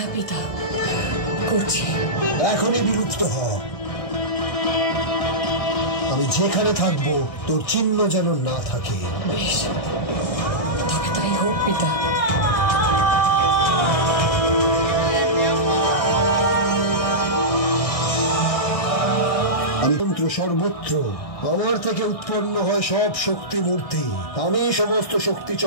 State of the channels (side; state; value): right; late; 1.6 ms